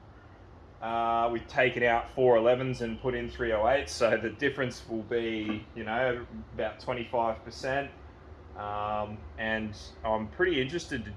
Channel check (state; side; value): identical; both; correlation 1.00